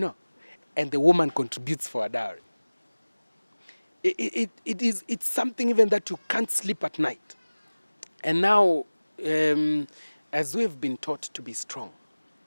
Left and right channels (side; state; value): both; inverted; correlation -1.00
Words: and the woman contributes for a dowry. It's something even that you can't sleep at night. And now, as we've been taught to be strong